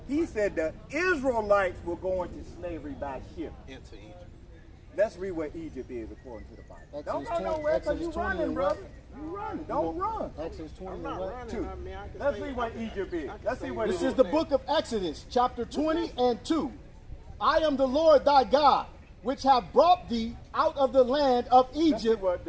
He said the Israelites were going to slavery by ship. Into Egypt. Let's read what Egypt is according to the Bible. Exodus Don't go 20 nowhere because you Exodus 20 running, and brother. what? You running. Don't run. Exodus 20 I'm and not what? running. Two. I mean, I can Let's say- see what Egypt is. Let's see what This it is the book of Exodus, chapter 20 and 2. I am the Lord thy God, which have brought thee out of the land of Let's see Egypt, what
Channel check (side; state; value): both; identical; correlation 1.00